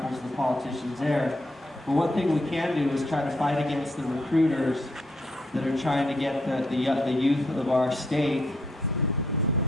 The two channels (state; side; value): normal; both; correlation 0.75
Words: to the politicians there. But one thing we can do is try to fight against the recruiters that are trying to get the youth of our state